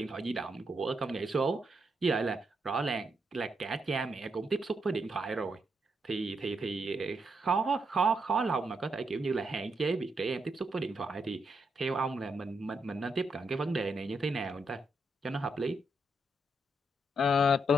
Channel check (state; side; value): normal; both; correlation 0.80